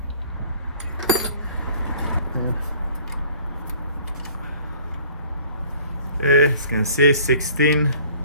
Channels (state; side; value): inverted; both; correlation -0.51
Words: Okay, as you can see, 16.